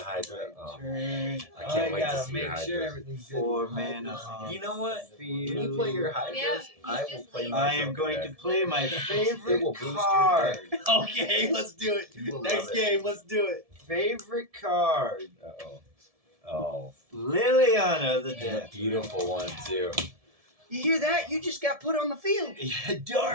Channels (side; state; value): left; late; 1.7 ms